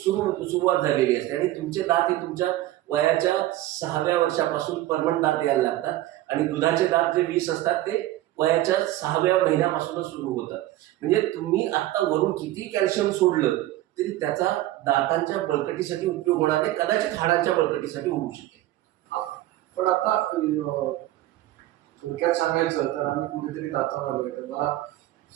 झालेली असते. आणि तुमचे दात हे तुमच्या वयाच्या 6व्या वर्षापासून परमनंट दात यायला लागतात आणि दुधाचे दात जे 20 असतात ते वयाच्या 6व्या महिन्यापासूनच सुरू होतात. म्हणजे तुम्ही आता वरून किती कॅल्शियम सोडलं तरी त्याचा दातांच्या बळकटीसाठी उपयोग होणार नाही, कदाचित हाडांच्या बळकटीसाठी होऊ शकेल. पण आता थोडक्यात सांगायचं तर आम्ही कुठेतरी दातावर आलोय, तर मला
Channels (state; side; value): quieter; left; 15.4 dB